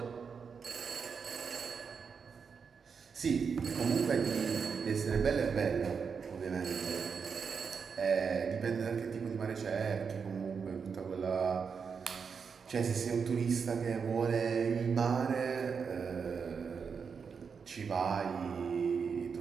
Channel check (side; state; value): left; quieter; 6.0 dB